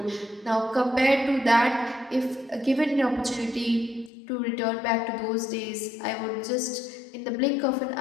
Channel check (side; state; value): right; drops out; at 4.1 s